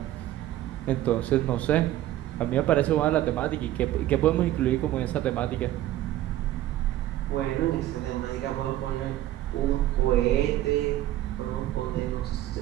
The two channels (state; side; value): quieter; left; 14.0 dB